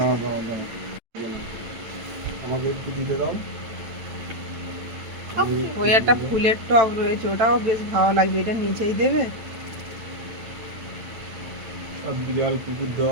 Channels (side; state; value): left; late; 9.0 ms